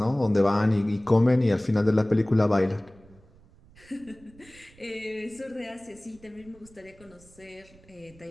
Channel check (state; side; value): noise; right; rumble, 26 dB below the sound